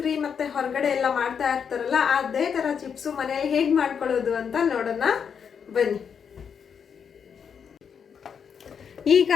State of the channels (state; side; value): quieter; right; 7.0 dB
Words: ಮತ್ತು ಹೊರಗಡೆ ಎಲ್ಲ ಮಾಡ್ತಾ ಇರ್ತಾರಲ್ಲ, ಅದೇ ಥರ ಚಿಪ್ಸು ಮನೇಲಿ ಹೇಗೆ ಮಾಡ್ಕೊಳ್ಳೋದು ಅಂತ ನೋಡೋಣ ಬನ್ನಿ. ಈಗ